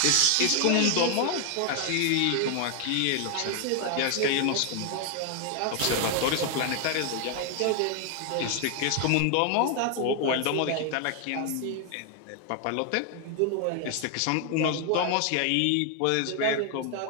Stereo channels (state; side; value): different; both; correlation 0.00